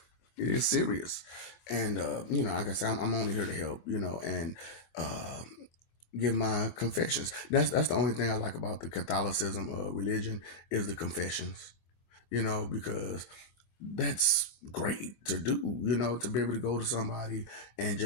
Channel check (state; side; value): late; right; 25 ms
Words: It is serious, and like I said, I'm only here to help. And uh, give my confessions. That's the only thing I like about the Catholicism religion is the confessions. Because that's great to do, to be able to go to somebody and